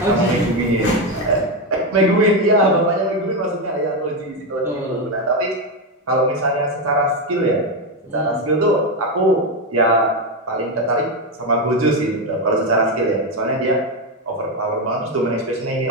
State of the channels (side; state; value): both; normal; correlation 0.09